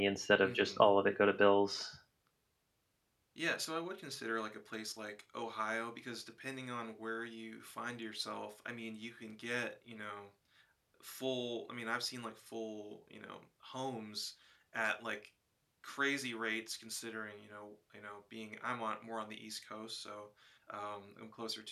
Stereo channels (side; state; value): both; identical; correlation 1.00